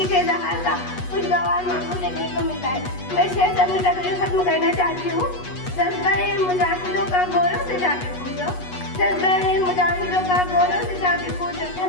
के इज़हार का खुशगवार माहौल देखने को मिलता है। मैं शेर अपनी तकरीर खत्म करना चाहती हूँ। जज्बा-ए मुजाहिदों का गौरव से जाके पूछो, जज्बा-ए मुजाहिदों का गौरव से जाके पूछो,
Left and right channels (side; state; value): right; late; 8.2 ms